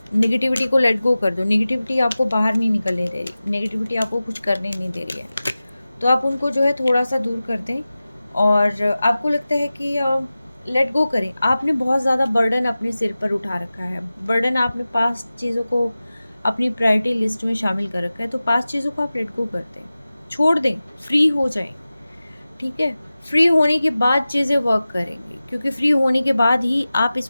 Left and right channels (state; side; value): inverted; both; correlation -0.96